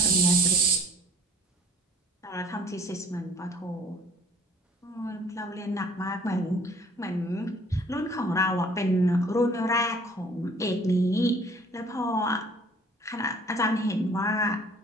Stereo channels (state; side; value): normal; both; correlation 0.53